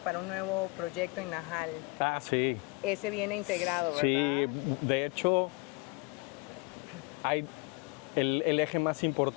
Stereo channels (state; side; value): quieter; right; 27.4 dB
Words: un nuevo proyecto en Najal. Ah, sí. Ese viene integrado, ¿verdad? Sí, de hecho, hay el eje más